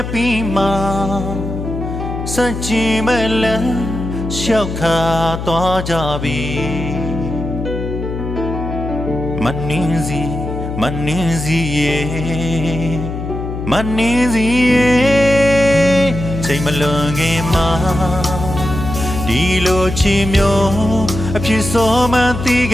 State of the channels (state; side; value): noise; left; hum, 6 dB below the sound